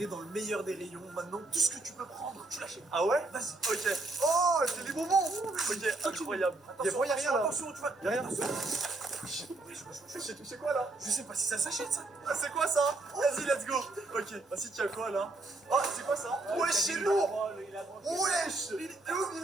dans le meilleur des rayons. Maintenant, tout ce que tu peux prendre, tu l'achètes. Ah ouais? Vas-y. Ok. Oh, c'est des bonbons! Ok, incroyable. Y'a rien là. Attention, tu vas. Y'a rien. Wesh. J'ai touché quoi là? Je sais pas si ça s'achète ça. Ah, c'est quoi ça? Vas-y, let's go! Ok, vas-y, tiens quoi là? Oh, c'est quoi ça? Wesh, c'est lourd! Wesh! Il est où,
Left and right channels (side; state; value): left; quieter; 3.1 dB